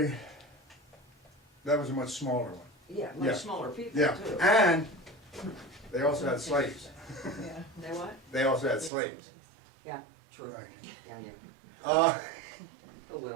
a much smaller one. yeah, Yeah. much smaller people Yeah, too. and they also had slaves. Yeah. They what? They also had slaves. Yeah, true. Right. Yeah. Uh, Oh,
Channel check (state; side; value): drops out; left; at 8.9 s